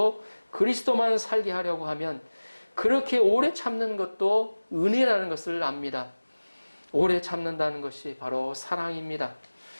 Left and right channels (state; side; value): inverted; both; correlation -1.00